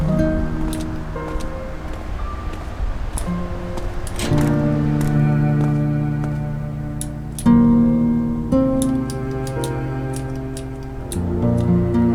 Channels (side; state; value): both; identical; correlation 1.00